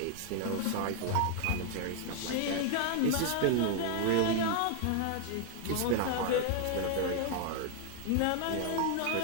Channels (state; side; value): different; both; correlation 0.00